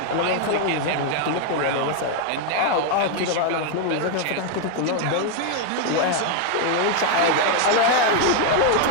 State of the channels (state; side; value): different; both; correlation 0.01